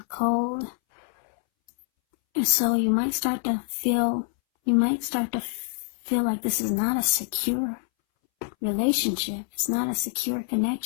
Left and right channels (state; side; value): silent; right; 61 dB below the other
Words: cold. So you might start to feel like this is not a secure relationship. It's not a secure